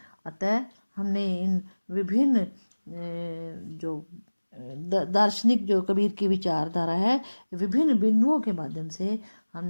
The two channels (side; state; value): both; inverted; correlation -1.00